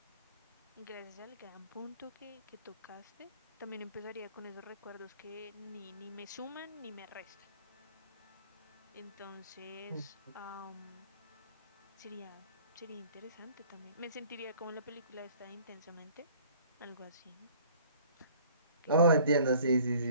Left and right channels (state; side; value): inverted; both; correlation -0.52